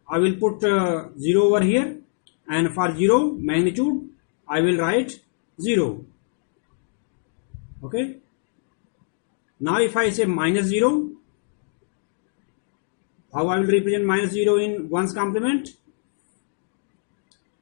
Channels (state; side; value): silent; right; digital silence